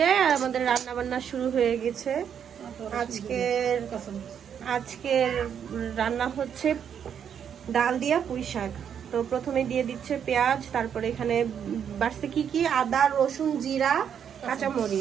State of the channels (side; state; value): left; quieter; 8.2 dB